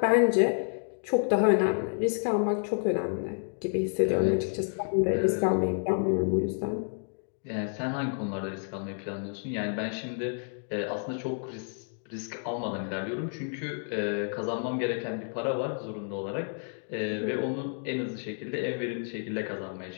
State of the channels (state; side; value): silent; right; 58 dB below the other